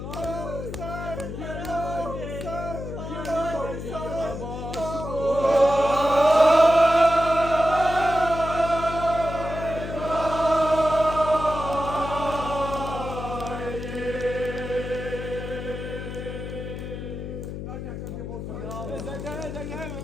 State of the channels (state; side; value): noise; left; hum, 7 dB below the sound